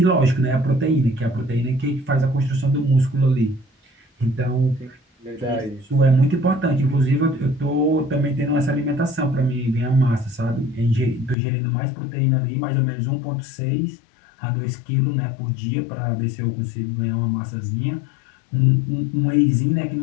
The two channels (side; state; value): right; drops out; at 11.4 s